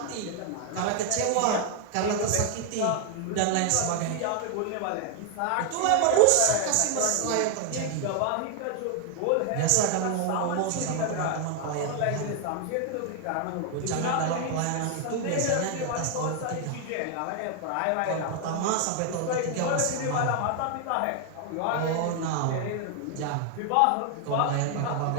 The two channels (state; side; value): different; both; correlation 0.00